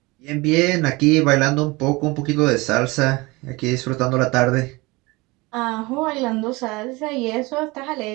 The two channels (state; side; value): quieter; left; 23.5 dB